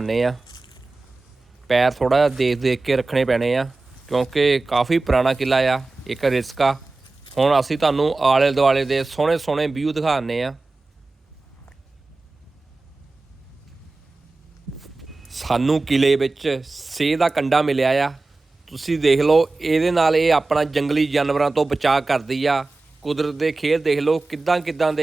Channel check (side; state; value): left; quieter; 3.4 dB